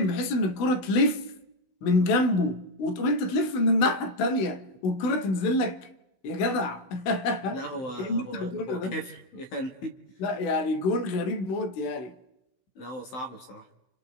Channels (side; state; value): right; late; 16 ms